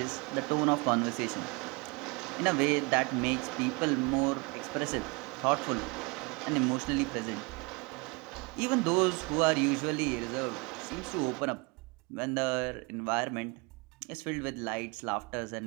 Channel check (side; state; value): left; quieter; 28.9 dB